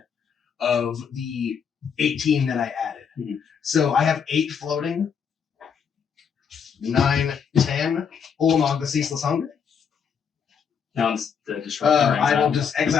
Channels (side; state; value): right; quieter; 6.9 dB